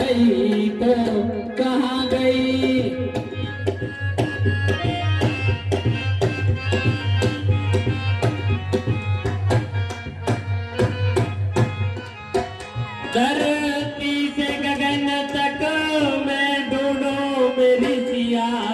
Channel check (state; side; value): identical; both; correlation 1.00